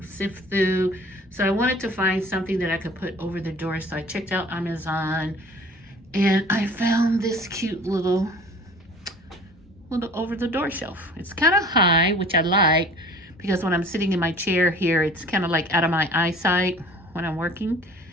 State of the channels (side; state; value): both; normal; correlation 0.47